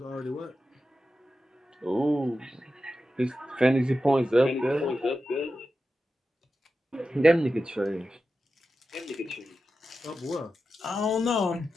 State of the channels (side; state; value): both; normal; correlation 0.91